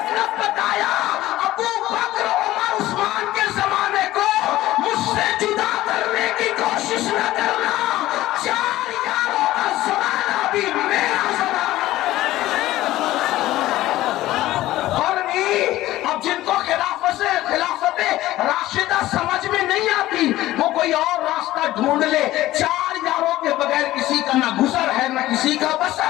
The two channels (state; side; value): quieter; right; 15.8 dB